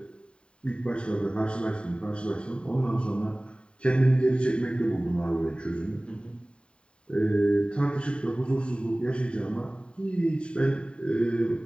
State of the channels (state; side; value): late; right; 0.053 ms